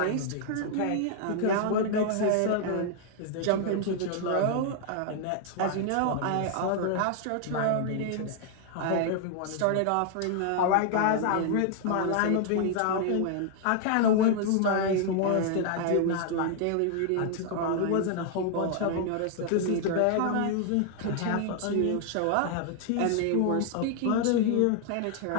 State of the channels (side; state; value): both; different; correlation 0.00